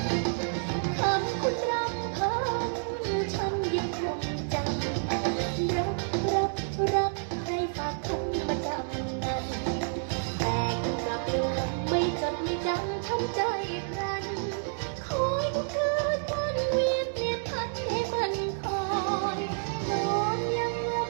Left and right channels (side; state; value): left; silent; digital silence